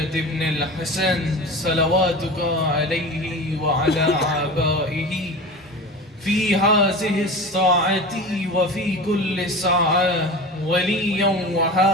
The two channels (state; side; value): normal; both; correlation 0.32